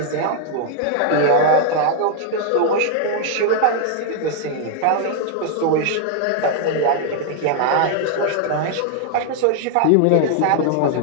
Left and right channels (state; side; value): different; both; correlation 0.00